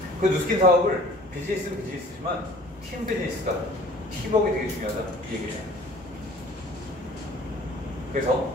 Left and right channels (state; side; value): normal; both; correlation 0.50